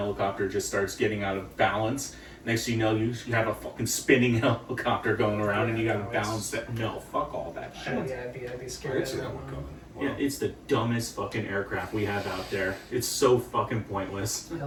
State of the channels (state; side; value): identical; both; correlation 1.00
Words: just starts getting out of balance. Next thing you know, you have a fucking spinning helicopter going around and you gotta balance that. No, fuck all that shit. Yeah, I'd be I scared. didn't of see that that one one. coming. Yeah, Wow. it's the dumbest fucking aircraft we have out there. It's so fucking pointless.